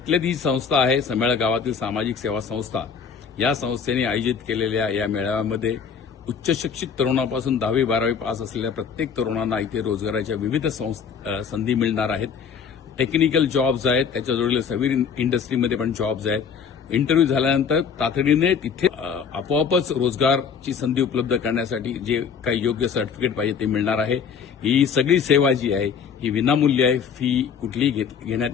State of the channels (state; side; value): quieter; right; 6.6 dB